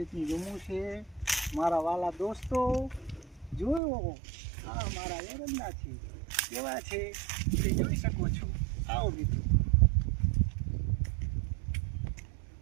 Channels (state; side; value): drops out; left; at 3.8 s